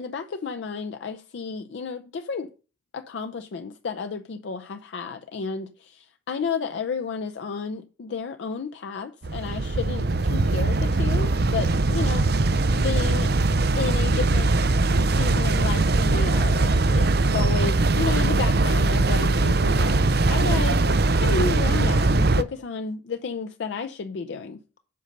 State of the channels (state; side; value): normal; both; correlation 0.63